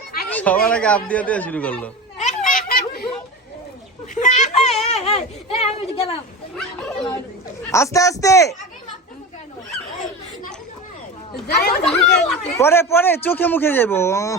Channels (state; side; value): normal; both; correlation 0.28